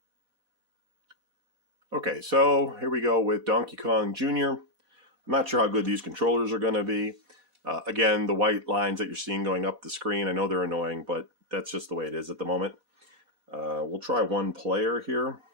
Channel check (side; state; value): left; late; 4.1 ms